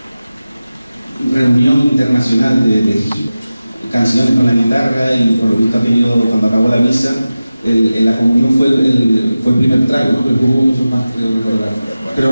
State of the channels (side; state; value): both; inverted; correlation -0.95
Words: reunión internacional de canciones con la guitarra, y por lo visto aquello, cuando acabó la misa, la comunión fue el primer trago, ¿no? Pero hubo muchos más, creo recordar. Creo